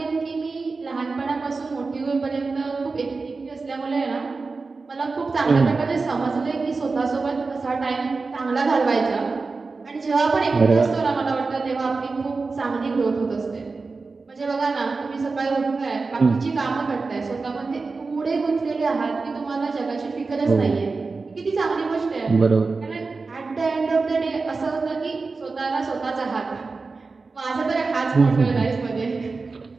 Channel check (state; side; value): quieter; left; 4.1 dB